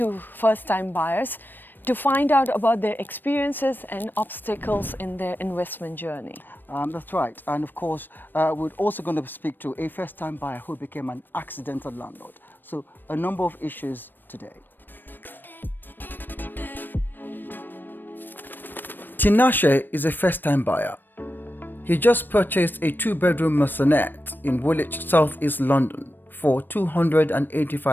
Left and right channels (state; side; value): late; right; 0.093 ms